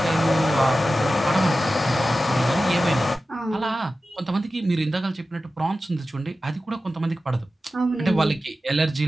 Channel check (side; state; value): both; normal; correlation 0.94